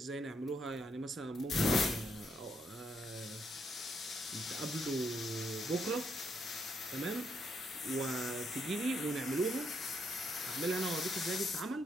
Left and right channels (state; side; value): normal; both; correlation 0.76